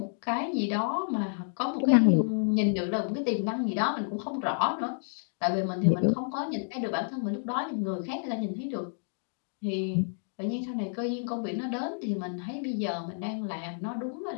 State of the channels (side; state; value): right; silent; digital silence